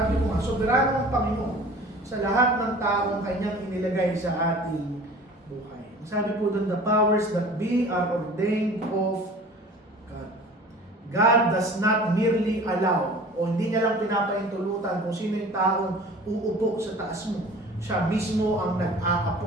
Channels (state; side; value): normal; both; correlation 0.44